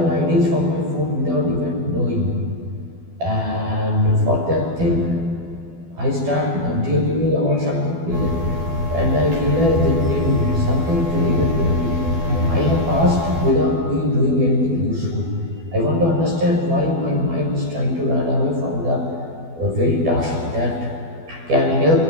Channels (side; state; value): left; late; 12 ms